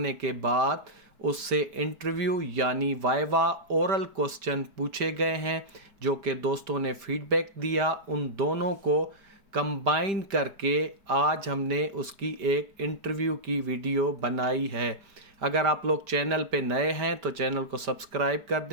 के बाद उससे इंटरव्यू यानी वाइवा ओरल क्वेश्चन पूछे गए हैं, जो कि दोस्तों ने फीडबैक दिया। उन दोनों को कंबाइन करके आज हमने उसकी एक इंटरव्यू की वीडियो बनाई है। अगर आप लोग चैनल पे नए हैं तो चैनल को सब्सक्राइब कर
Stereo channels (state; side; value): late; left; 5.1 ms